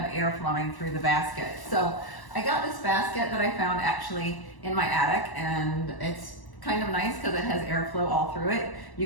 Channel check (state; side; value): late; right; 1.1 ms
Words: air flowing through the basket. So I got this basket that I found actually in my attic, and it's kind of nice because it has airflow all through it.